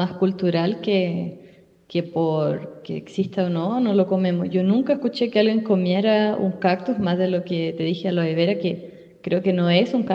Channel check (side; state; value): both; identical; correlation 1.00